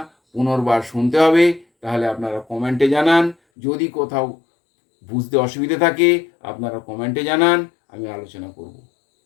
পুনর্বার শুনতে হবে, তাহলে আপনারা কমেন্টে জানান। যদি কোথাও বুঝতে অসুবিধে থাকে আপনারা কমেন্টে জানান, আমি আলোচনা করব।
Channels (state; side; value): drops out; right; at 3.4 s